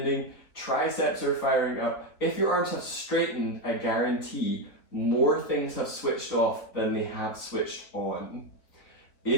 triceps are firing up. If your arms have straightened, I guarantee more things have switched off than they have switched on.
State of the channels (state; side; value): late; right; 3.8 ms